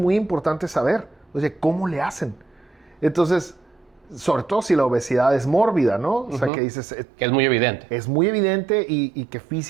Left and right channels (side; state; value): left; drops out; at 6.5 s